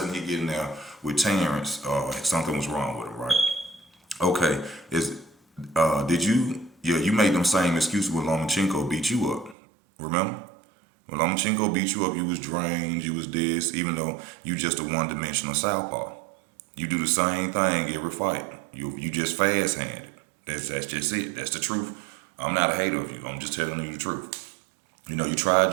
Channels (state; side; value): drops out; left; at 9.6 s